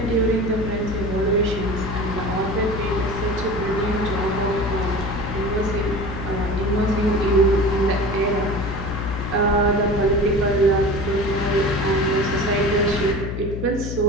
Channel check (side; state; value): left; noise; hum, 5 dB below the sound